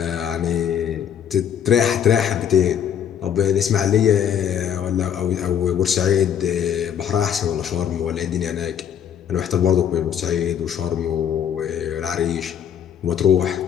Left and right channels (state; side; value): quieter; right; 8.8 dB